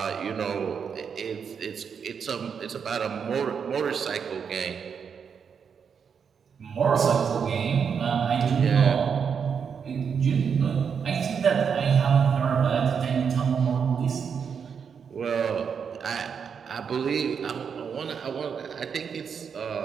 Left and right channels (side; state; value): left; quieter; 6.7 dB